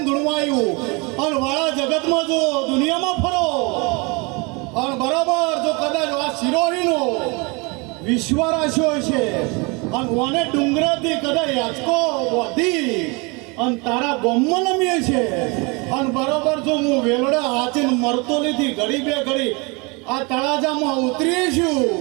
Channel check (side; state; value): left; quieter; 29.0 dB